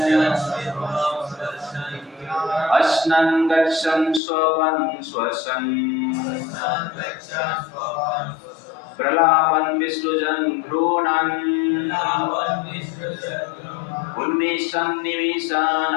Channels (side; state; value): right; drops out; at 4.2 s